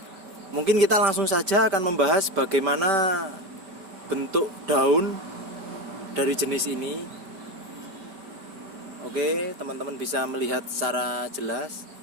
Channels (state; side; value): late; left; 5.2 ms